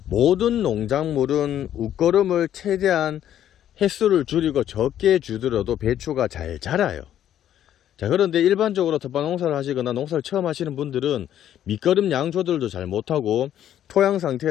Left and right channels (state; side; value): quieter; right; 10.9 dB